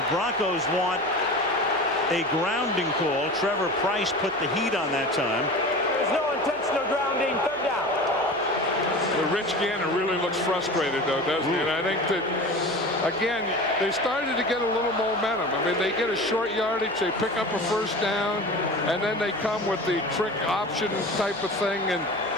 Broncos want a grounding call. Trevor Price put the heat on that time. There's no intentional grounding. 3rd down. Well, Rich Gannon really looks frustrated, though, doesn't he? And I think that, again, they started to get a little momentum. I mean, they get a short yardage, they pick up a 1st down, and then they come with the trick option type of thing, and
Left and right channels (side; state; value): right; noise; hum, 25 dB below the sound